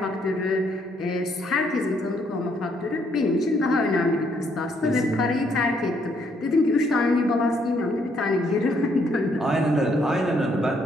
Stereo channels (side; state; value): both; normal; correlation 0.70